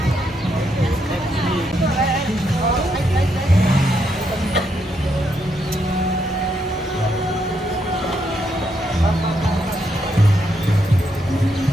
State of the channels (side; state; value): both; normal; correlation 0.78